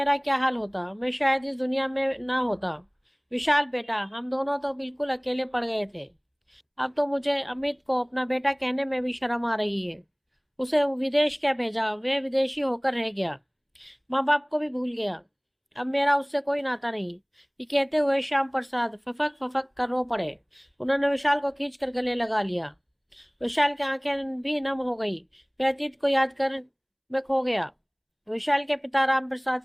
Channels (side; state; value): both; identical; correlation 1.00